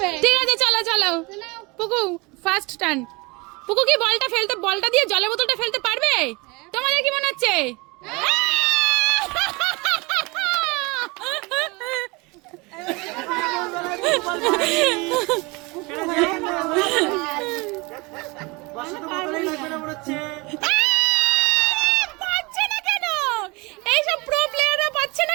ঠিক আছে, চলো চলো। পুকু ফার্স্ট টার্ন। পুকু কি বলটা দিয়ে জলের বোতলটা ফেলতে পারবে? তোমাদের কি মনে হচ্ছে? পাচ্ছে না কেন? এইসব প্রো প্লেয়াররা পাচ্ছে না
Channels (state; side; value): quieter; left; 26.1 dB